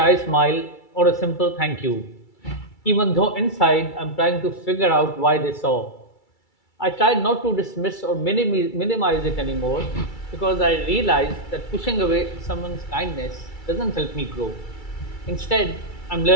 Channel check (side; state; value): right; late; 2.3 ms